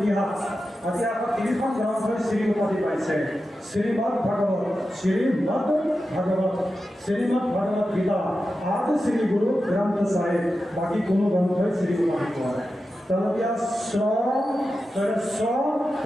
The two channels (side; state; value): both; normal; correlation 0.91